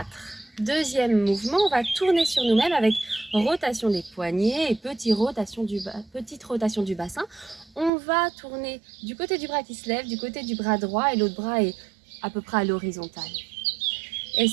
Deuxième mouvement, on va tourner sur nous-mêmes avec rotation des poignets et petite rotation du bassin. On va tourner du côté du bras qui se lève, du côté du bras droit et l'autre bras est à peu près à l'horizontale. Et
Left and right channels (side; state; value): left; drops out; at 7.9 s